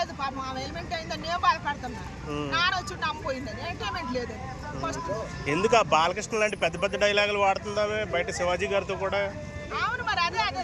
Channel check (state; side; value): identical; both; correlation 1.00